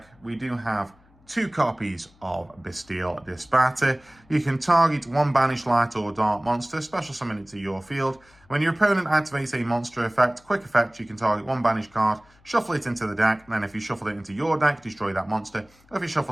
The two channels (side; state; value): left; noise; hum, 30 dB below the sound